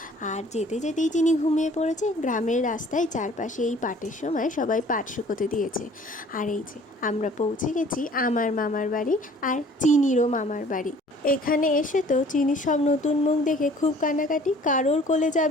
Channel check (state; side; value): normal; both; correlation 0.53